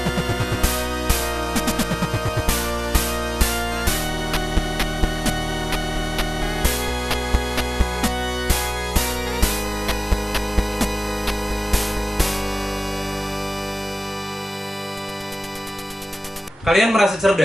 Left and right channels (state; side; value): normal; both; correlation 0.98